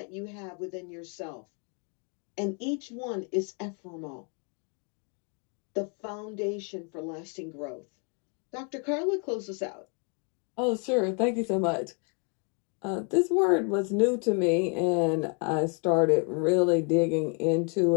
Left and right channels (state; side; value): quieter; right; 38.8 dB